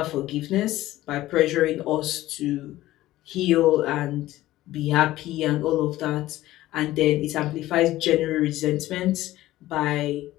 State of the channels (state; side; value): quieter; right; 15.8 dB